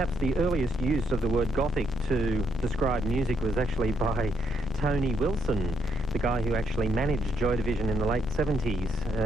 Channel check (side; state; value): left; noise; rumble, 10 dB below the sound